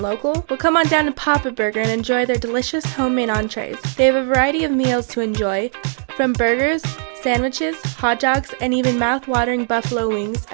local? Well, come on down to Papa Burger and enjoy their delicious homemade entrees. They have a variety of meals to enjoy, from burgers, sandwiches, hot dogs, and even mouth-watering buffalo wings,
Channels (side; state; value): left; silent; 59 dB below the other